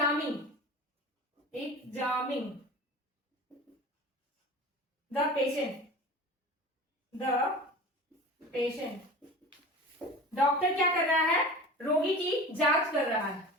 the patient. Doctor क्या कर रहा है, रोगी की जांच कर रहा है।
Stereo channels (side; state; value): both; normal; correlation 0.35